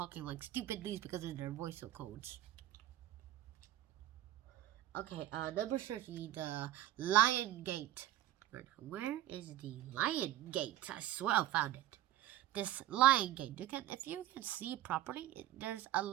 like stupidly? Because of their voice codes. Okay, number 30, the Lion Gate. Where is the Lion Gate? I swear I found it. This Lion Gate. If you can see properly, there's a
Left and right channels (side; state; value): left; quieter; 13.4 dB